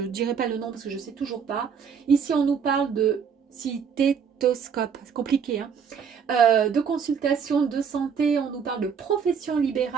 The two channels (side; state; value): left; quieter; 6.8 dB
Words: dirai pas le nom parce que je ne sais toujours pas. Ici, on nous parle de stéthoscope, c'est compliqué, hein. De consultation de santé, on nous parle de profession